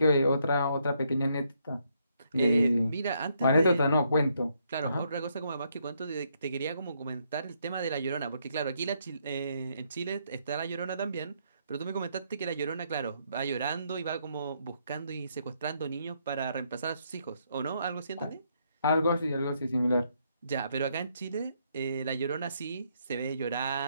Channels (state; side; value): inverted; both; correlation -0.74